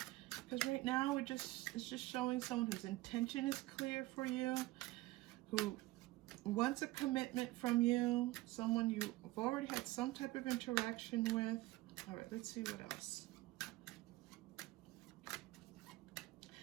Because right now it's just showing someone whose intention is clear for you, who wants a commitment from you, someone you've already had some type of interaction with. All right, let's see what else.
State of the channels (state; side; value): quieter; left; 18.5 dB